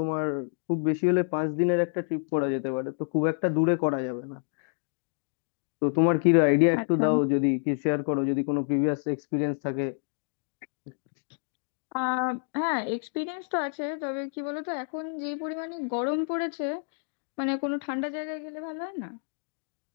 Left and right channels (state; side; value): silent; right; digital silence